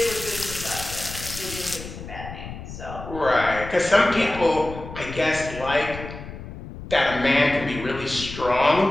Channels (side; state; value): left; noise; rumble, 11 dB below the sound